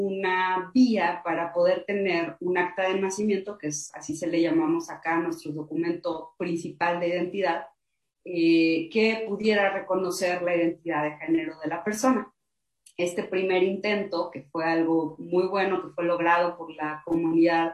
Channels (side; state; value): both; identical; correlation 1.00